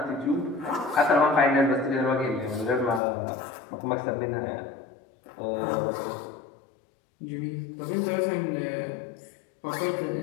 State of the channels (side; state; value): right; drops out; at 3.0 s